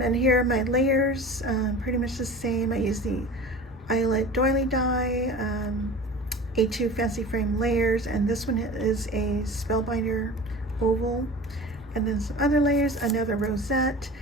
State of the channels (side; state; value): both; normal; correlation 0.36